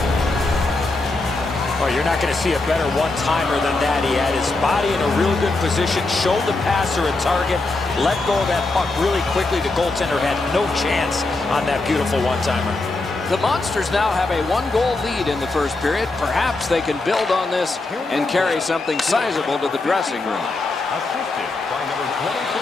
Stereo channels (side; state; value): right; quieter; 3.2 dB